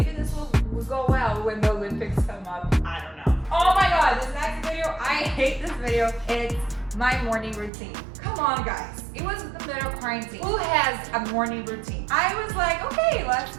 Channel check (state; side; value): drops out; left; at 7.7 s